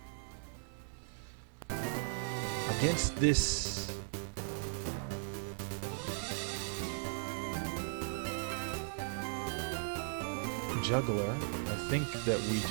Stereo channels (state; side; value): silent; left; digital silence